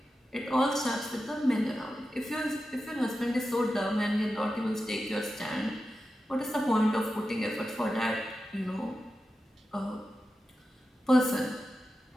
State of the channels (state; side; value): normal; both; correlation 0.91